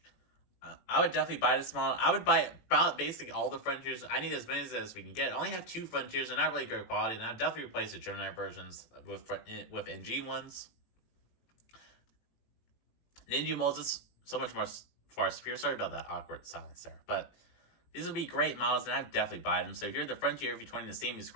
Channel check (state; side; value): late; right; 18 ms